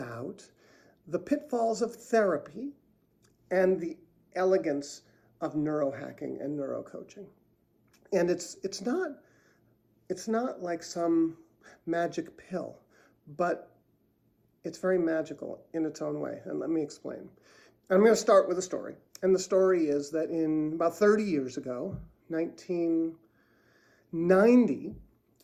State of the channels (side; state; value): both; identical; correlation 1.00